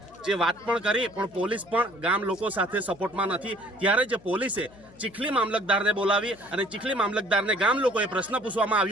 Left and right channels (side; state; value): left; noise; hum, 24 dB below the sound